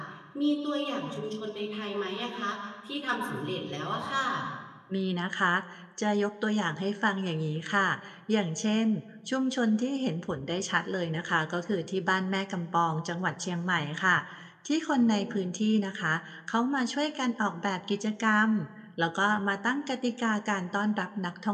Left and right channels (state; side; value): identical; both; correlation 1.00